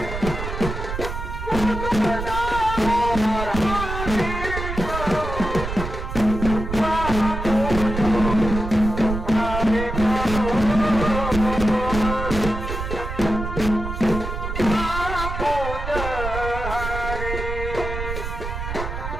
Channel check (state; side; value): noise; right; rumble, 5 dB below the sound